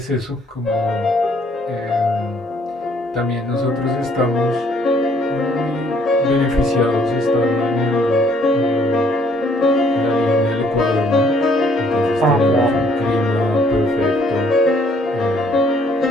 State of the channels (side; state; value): both; normal; correlation 0.64